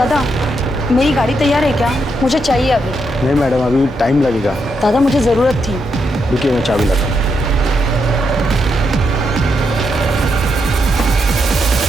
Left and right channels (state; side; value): normal; both; correlation 0.81